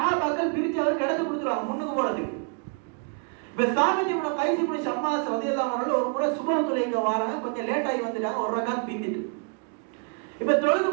பிரிச்சு அவர் கிடந்து கொடுத்துருவாங்க முன்னுக்கு போறதுக்கு. இப்ப சாபித் இப்னு கைஸ் இப்னு ஷம்மாஸ் ரலியல்லாஹு அன்ஹு ஒரு முறை சுபஹ் தொழுகைக்கு வராங்க, கொஞ்சம் லேட் ஆகி வந்துட்டாங்க, ஒரு ரக்காத் பிந்திட்டு. இப்ப தொழுது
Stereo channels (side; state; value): left; quieter; 37.8 dB